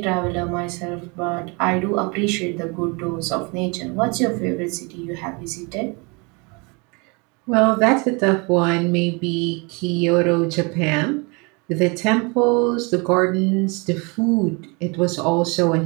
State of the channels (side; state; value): left; quieter; 30.0 dB